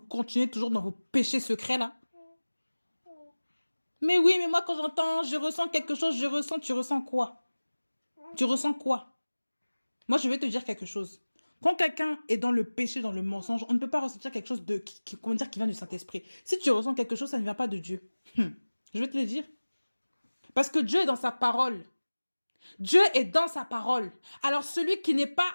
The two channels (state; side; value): inverted; both; correlation -1.00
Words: toujours dans vos péchés secrets là? Mais oui, mais moi quand j'entends, je ressens quelque chose, tu ressens quoi? Tu ressens quoi? Moi, je vais te dire quelque chose. Quand quelqu'un est dans le péché, dans le mensonge, on ne peut pas ressentir quelque chose comment dire, qui vient du Saint-Esprit. Si tu ressens quelque chose, ça ne vient pas de Dieu. Je vais te le dire. Parce que Dieu est dans sa parole. Dieu est dans sa parole. Alors celui qui n'est pas